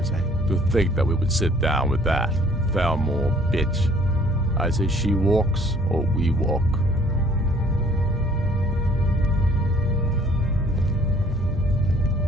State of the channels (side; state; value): both; normal; correlation 0.58